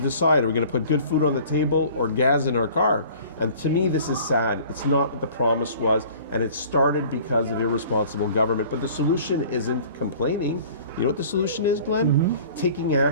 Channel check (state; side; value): inverted; both; correlation -0.48